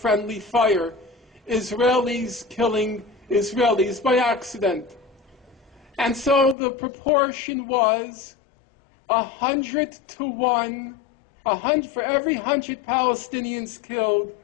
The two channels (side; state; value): right; drops out; at 6.6 s